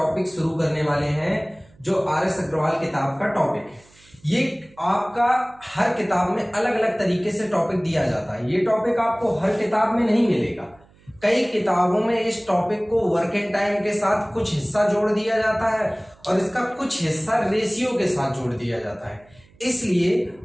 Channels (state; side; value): noise; right; hum, 29 dB below the sound